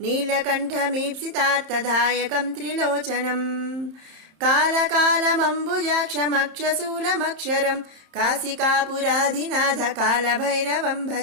नीलकण्ठमीप्सितार्थदायकं त्रिलोचनम् कालकालमम्बुजाक्षमक्षशूलमक्षरं काशिकापुराधिनाथकालभैरवं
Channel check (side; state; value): left; late; 30 ms